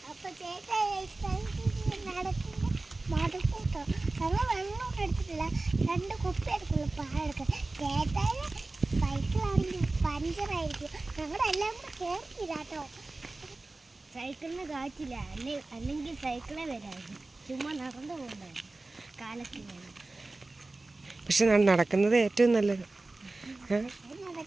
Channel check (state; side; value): quieter; left; 3.2 dB